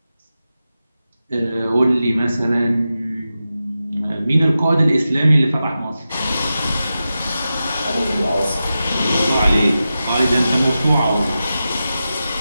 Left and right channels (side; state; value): both; inverted; correlation -0.92